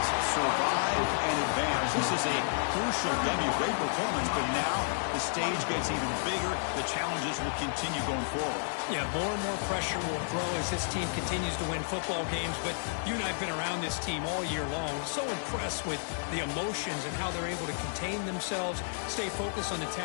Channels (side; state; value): right; silent; digital silence